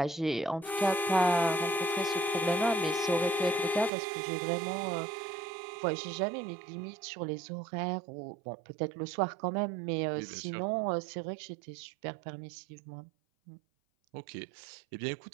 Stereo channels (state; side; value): drops out; left; at 3.9 s